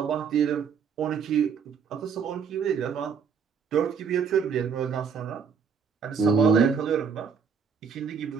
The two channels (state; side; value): quieter; left; 6.3 dB